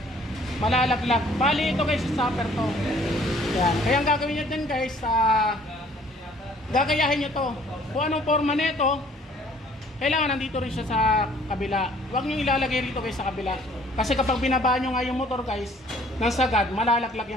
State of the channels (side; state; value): both; normal; correlation 0.57